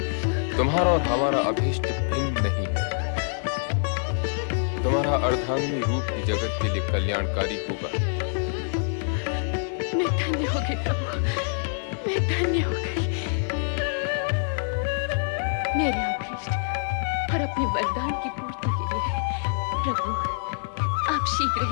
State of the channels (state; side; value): silent; right; digital silence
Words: तुम्हारा और हमारा अभीष्ट भिन्न नहीं है। तुम्हारा अर्धांगिनी रूप ही जगत के लिए कल्याणकारी होगा। मैं धन्य हो गई प्रभु, मैं धन्य हो गई। मेरे अभीष्ट और अपने वरदान की पूर्ति के लिए प्रभु आप शीघ्र